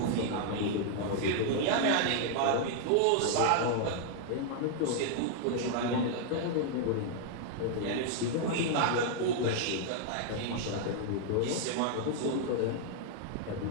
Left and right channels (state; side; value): different; both; correlation 0.00